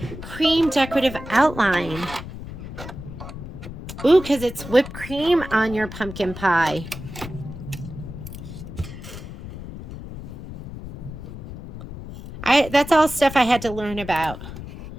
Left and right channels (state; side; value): noise; left; rumble, 11 dB below the sound